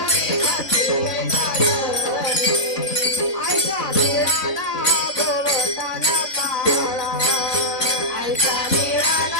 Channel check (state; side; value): late; right; 3.6 ms